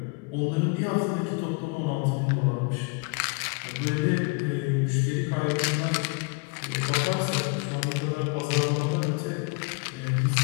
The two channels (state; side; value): quieter; right; 31.5 dB